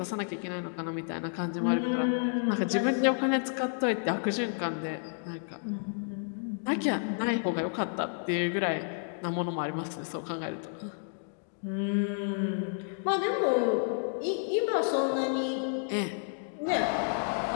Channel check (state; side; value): silent; right; digital silence